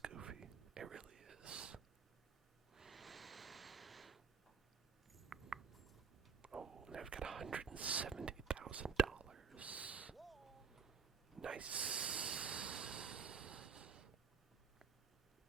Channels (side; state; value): left; quieter; 6.1 dB